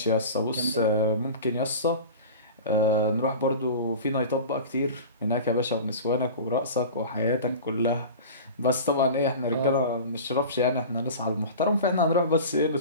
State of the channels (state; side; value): inverted; both; correlation -0.35